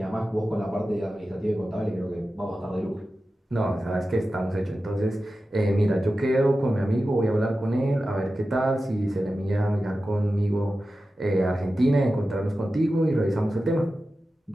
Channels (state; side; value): normal; both; correlation 0.93